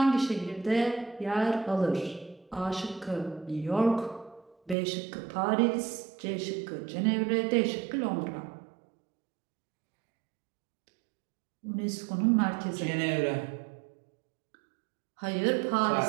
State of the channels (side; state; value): left; drops out; at 4.8 s